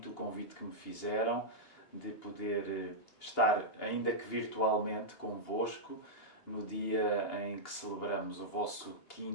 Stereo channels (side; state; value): right; late; 2.8 ms